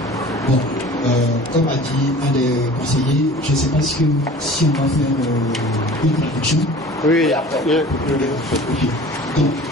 Bon, comme a dit un des conseillers, je ne sais pas si on va faire une traduction. Oui, après. Donc,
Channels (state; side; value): normal; both; correlation 0.43